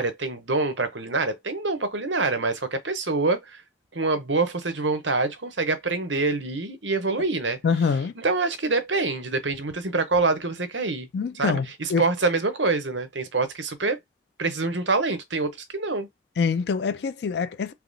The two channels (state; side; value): normal; both; correlation -0.04